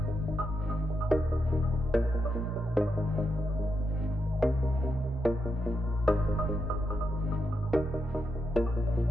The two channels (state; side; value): normal; both; correlation 0.83